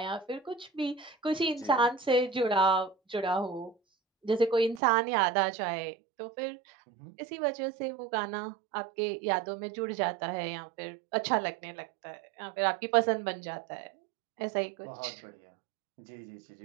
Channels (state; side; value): drops out; left; at 4.8 s